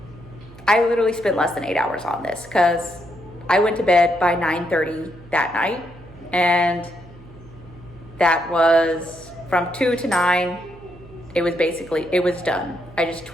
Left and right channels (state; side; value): noise; right; hum, 21 dB below the sound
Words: I literally spent less than 8 hours on this because I went to bed by 9:30 that night, and that was from 2 to 9. It was done. I just